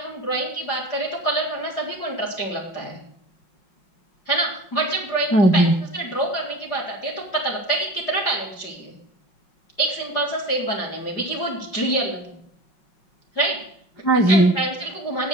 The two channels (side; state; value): right; late; 5.5 ms